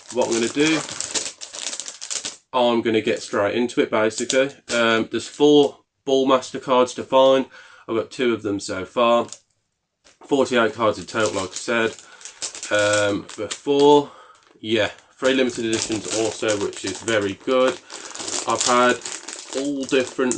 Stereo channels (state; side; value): identical; both; correlation 1.00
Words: what I'm going to do, I'm going to get straight into it basically. There's 4 Ballmaster cards to find. I've got 2 of them so far. 48 cards in total, like I said. Before, yeah, 3 limited editions also, which is very good. I've had all different